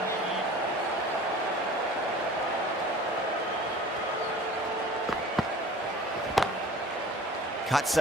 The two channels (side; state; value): both; normal; correlation 0.45